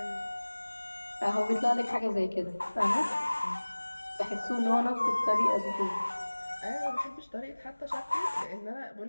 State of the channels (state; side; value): inverted; both; correlation -1.00